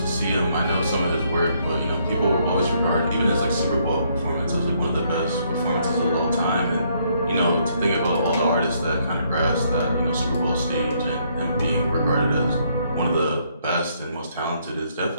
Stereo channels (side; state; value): both; inverted; correlation -0.70